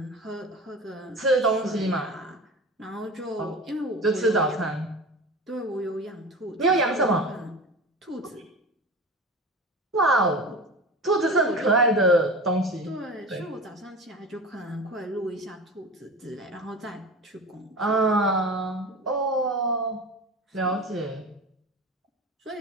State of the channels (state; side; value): normal; both; correlation 0.32